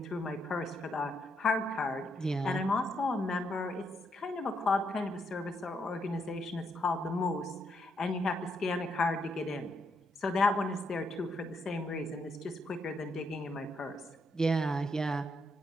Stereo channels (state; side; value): normal; both; correlation 0.77